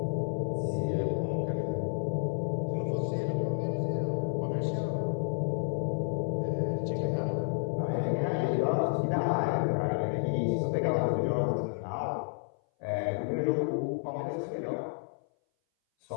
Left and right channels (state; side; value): silent; right; 57 dB below the other